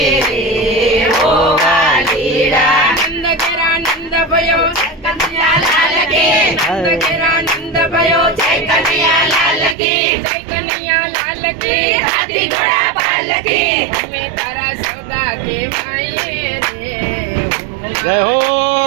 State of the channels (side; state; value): left; drops out; at 9.8 s